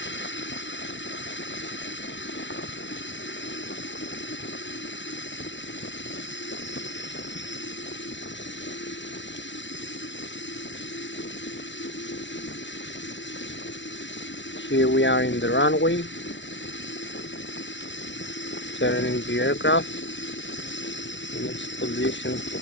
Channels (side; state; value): right; late; 0.54 ms